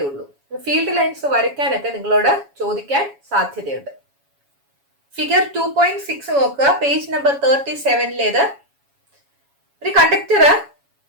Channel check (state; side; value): late; left; 7.2 ms